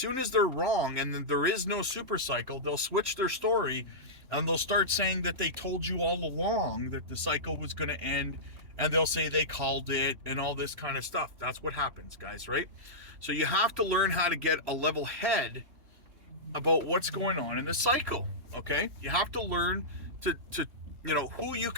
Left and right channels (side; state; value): left; late; 3.0 ms